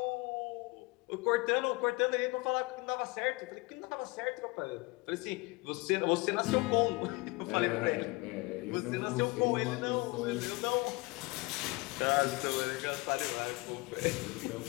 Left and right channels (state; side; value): quieter; right; 24.8 dB